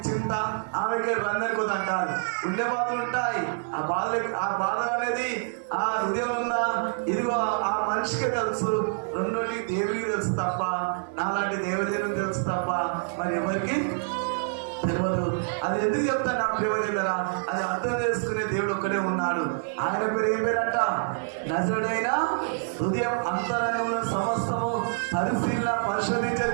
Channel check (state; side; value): silent; left; 60 dB below the other